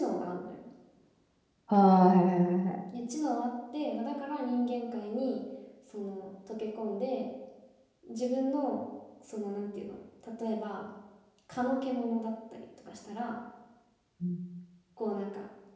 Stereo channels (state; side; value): identical; both; correlation 1.00